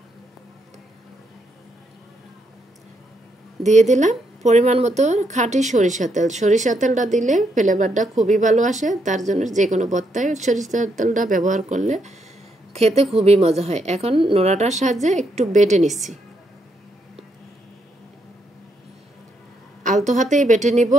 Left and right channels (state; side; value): normal; both; correlation 0.77